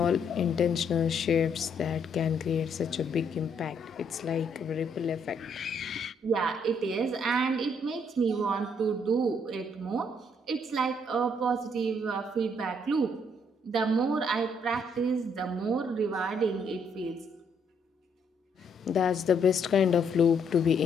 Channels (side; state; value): both; normal; correlation 0.70